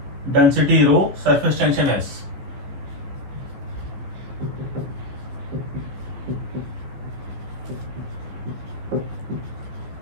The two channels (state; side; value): late; left; 14 ms